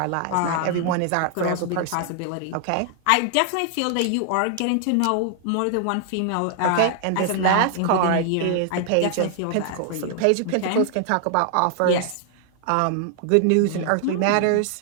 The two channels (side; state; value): both; different; correlation 0.00